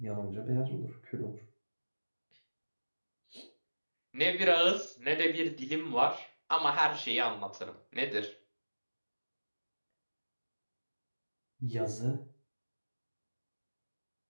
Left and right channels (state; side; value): inverted; both; correlation -1.00